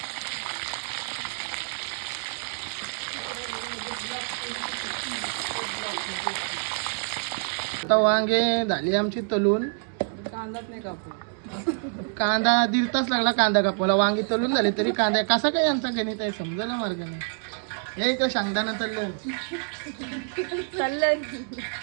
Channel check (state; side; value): silent; left; 60 dB below the other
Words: आता वांगे झाली आमची तलून। कांदाच नाही कापू। कांदा 1.5 तास लागला कांदा कापायला। वांगी तलून झाली तरी कांदा कसा काय यांचा गणित आहे समजायला मार्ग नाही। हे इकडे शेंगदाणा तळलं